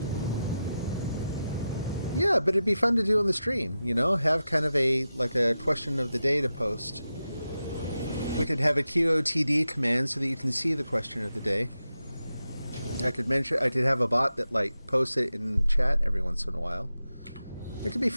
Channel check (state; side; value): inverted; both; correlation -0.91